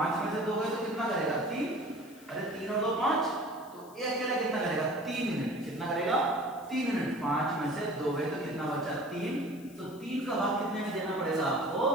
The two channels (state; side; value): noise; left; hiss, 23 dB below the sound